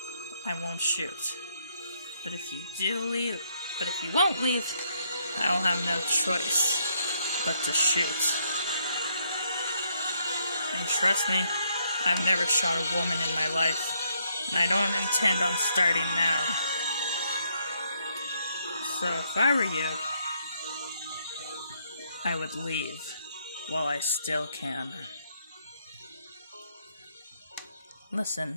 I won't shoot. But if you won't leave, I'll have no choice but to shoot. And trust me, I've never shot a woman in my life, and I don't intend on starting now. So if I were you, I would leave while I still can.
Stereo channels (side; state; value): both; inverted; correlation -0.72